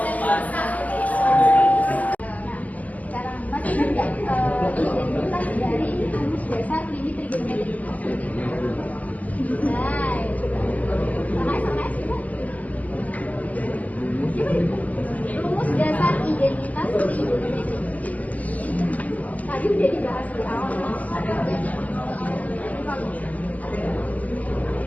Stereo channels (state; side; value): late; right; 0.074 ms